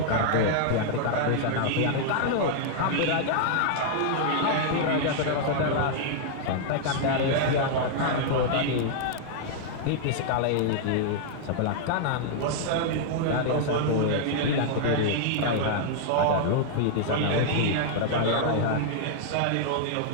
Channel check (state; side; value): different; both; correlation -0.01